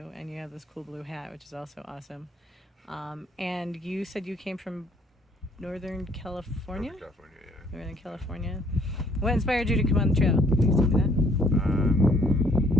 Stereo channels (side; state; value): both; normal; correlation 0.62